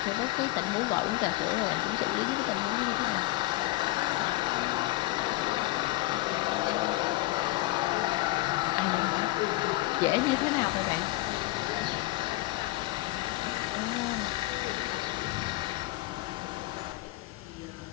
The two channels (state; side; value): quieter; right; 19.0 dB